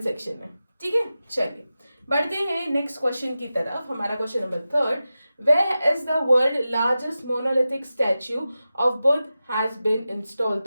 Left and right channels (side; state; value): both; inverted; correlation -0.93